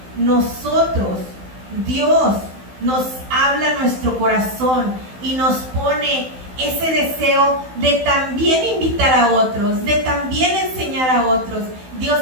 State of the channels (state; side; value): late; left; 16 ms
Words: nosotros, Dios, nos habla a nuestro corazón y nos pone ese deseo de también invitar a otros, de también enseñar a otros. Dios